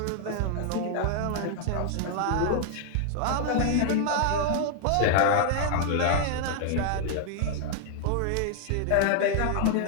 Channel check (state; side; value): different; both; correlation 0.00